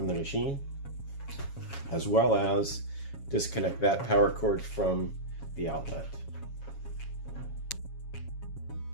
the machine, as well as disconnect that power cord from the outlet.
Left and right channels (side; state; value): right; late; 7.2 ms